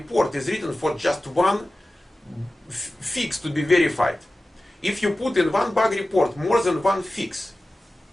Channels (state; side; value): normal; both; correlation 0.95